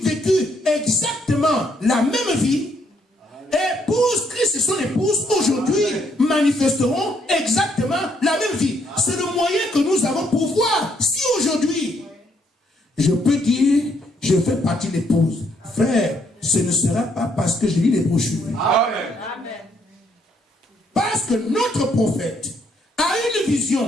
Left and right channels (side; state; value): both; normal; correlation 0.72